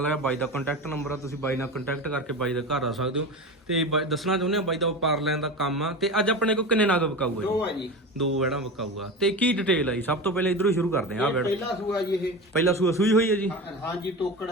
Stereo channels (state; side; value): normal; both; correlation 0.26